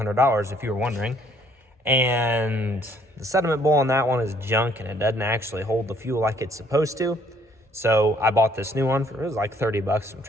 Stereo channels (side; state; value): both; normal; correlation 0.64